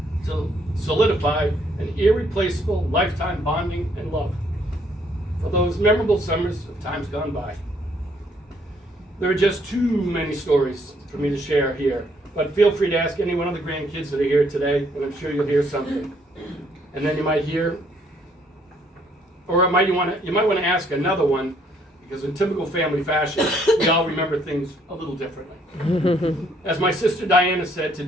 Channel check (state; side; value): normal; both; correlation 0.67